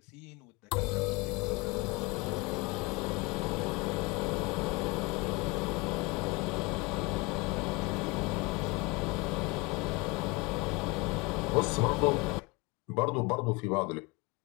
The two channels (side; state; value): right; quieter; 25.7 dB